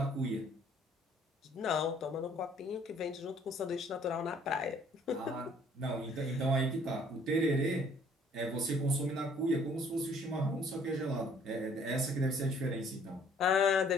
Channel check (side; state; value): both; normal; correlation 0.59